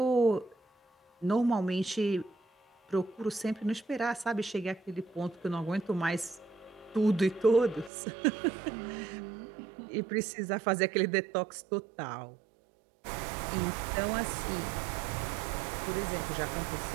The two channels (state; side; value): drops out; left; at 7.9 s